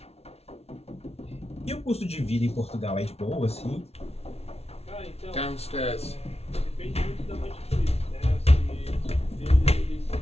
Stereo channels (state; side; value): late; right; 0.30 ms